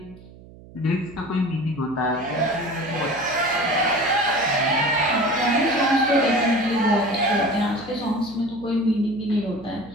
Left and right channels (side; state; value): right; noise; hum, 20 dB below the sound